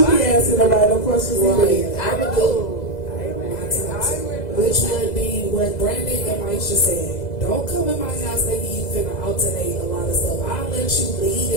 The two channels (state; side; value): late; right; 2.0 ms